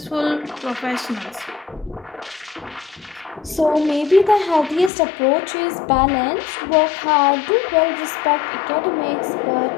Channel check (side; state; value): right; drops out; at 4.9 s